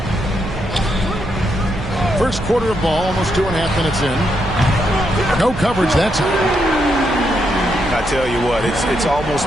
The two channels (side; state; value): right; noise; hum, 10 dB below the sound